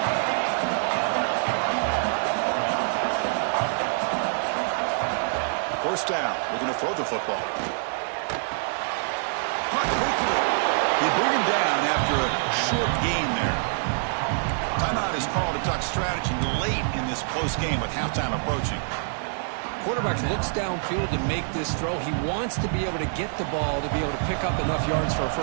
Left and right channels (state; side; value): silent; left; digital silence